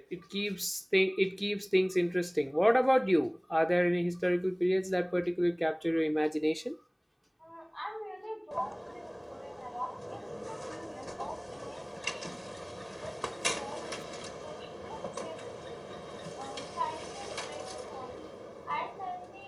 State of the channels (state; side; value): identical; both; correlation 1.00